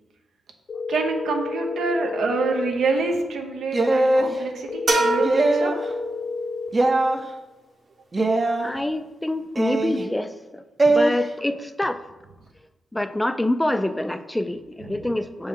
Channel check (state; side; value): normal; both; correlation 0.89